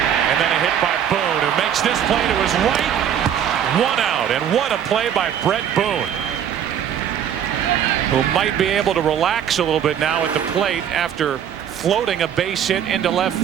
then a hit by Boone, who makes this play to his right. 1 out. And what a play by Brett Boone, who might be able to relax a little bit now at the plate after floating a base hit into left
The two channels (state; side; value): quieter; left; 9.2 dB